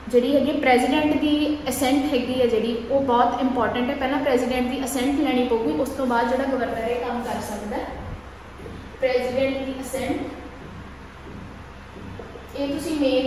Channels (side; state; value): both; identical; correlation 1.00